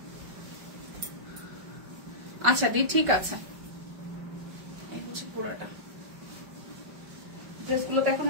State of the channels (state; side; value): late; left; 5.2 ms